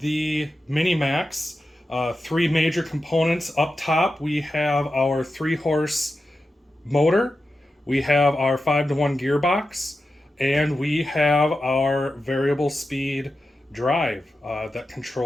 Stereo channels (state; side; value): normal; both; correlation 0.91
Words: MiniMAX. Three major components. Up top we have our 3-horse motor, we have our 5-to-1 gearbox, and we have our variable speed drive that